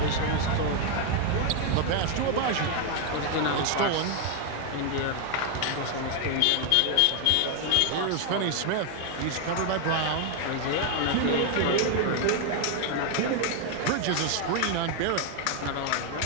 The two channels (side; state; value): both; different; correlation 0.01